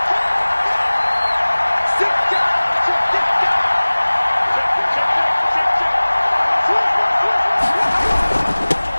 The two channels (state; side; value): inverted; both; correlation -1.00